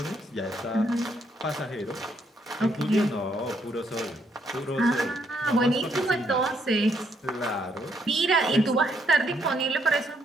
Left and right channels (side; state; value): both; normal; correlation 0.73